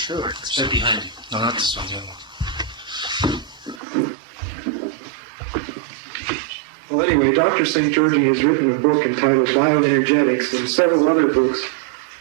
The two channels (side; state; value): left; drops out; at 3.8 s